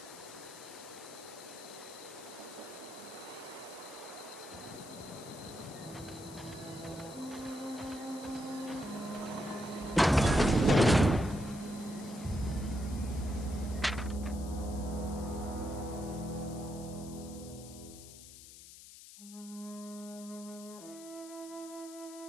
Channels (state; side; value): noise; left; hiss, 16 dB below the sound